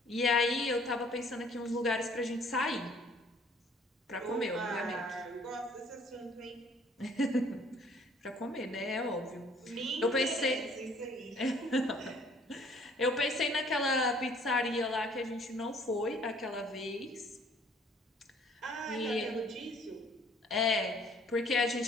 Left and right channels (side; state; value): both; normal; correlation 0.57